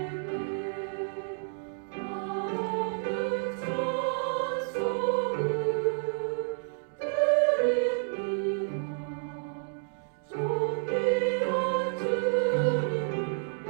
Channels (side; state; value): left; silent; digital silence